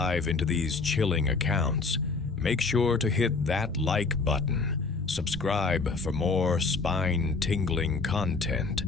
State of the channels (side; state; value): right; quieter; 4.2 dB